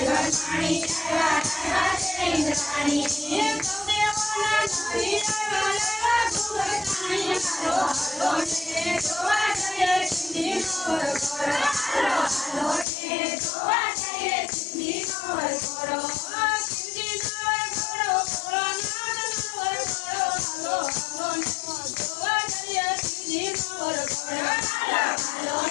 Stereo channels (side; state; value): right; drops out; at 12.9 s